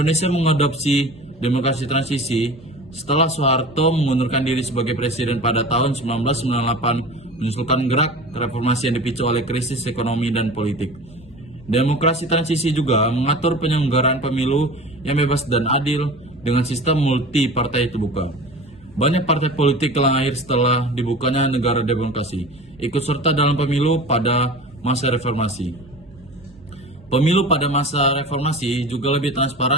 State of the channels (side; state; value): right; noise; hum, 27 dB below the sound